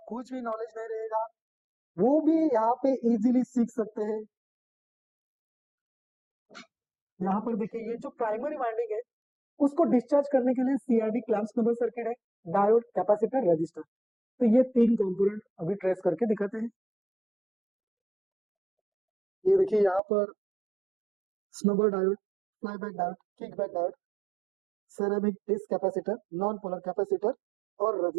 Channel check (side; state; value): left; drops out; at 20.0 s